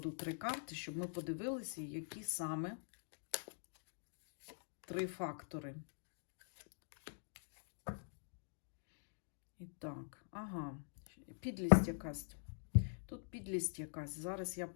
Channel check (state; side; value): silent; right; digital silence